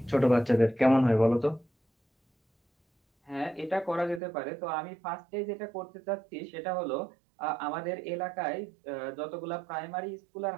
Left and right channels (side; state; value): left; drops out; at 4.2 s